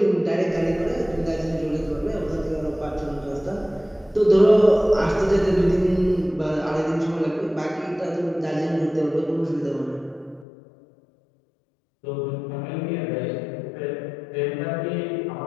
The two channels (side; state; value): right; drops out; at 10.5 s